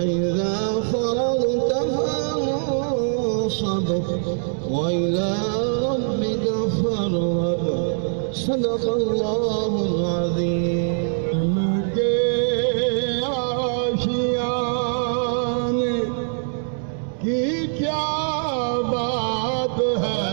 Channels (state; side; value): silent; left; 63 dB below the other